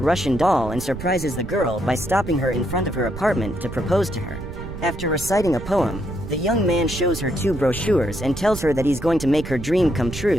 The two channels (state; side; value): noise; right; rumble, 9 dB below the sound